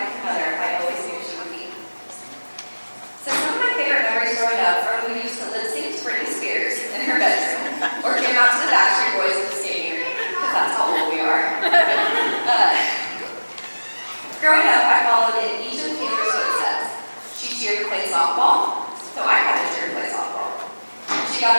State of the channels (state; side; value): inverted; both; correlation -1.00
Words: and mother I always knew she would be. So some of my favorite memories growing up are when we used to lip sync to Britney Spears in her bedroom or came out to the Backstreet Boys at the skating rink, because that's how old we are. Growing up, I followed in each of Taylor's footsteps. She cheered to play softball, so I had to cheer to play softball. She got